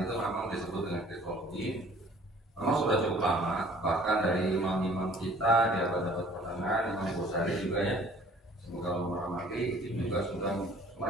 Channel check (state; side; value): normal; both; correlation 0.53